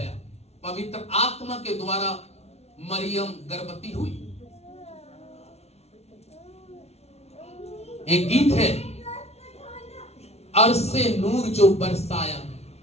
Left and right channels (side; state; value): right; late; 0.31 ms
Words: पवित्र आत्मा के द्वारा मरियम गर्भवती हुई। एक गीत है, अरसे नूर जो बरसाया।